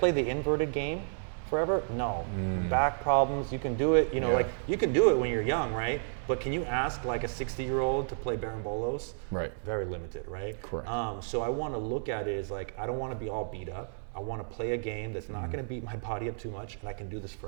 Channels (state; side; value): silent; left; digital silence